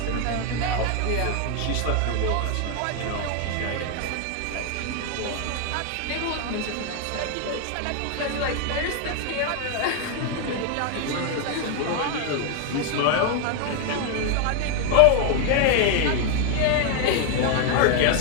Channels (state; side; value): different; both; correlation 0.01